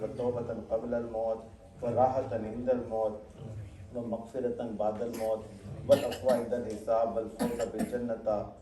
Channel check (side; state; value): both; identical; correlation 1.00